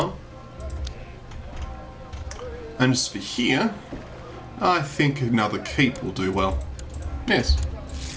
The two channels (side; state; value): both; identical; correlation 1.00